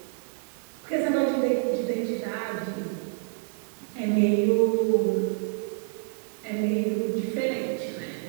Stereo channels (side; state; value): left; silent; 60 dB below the other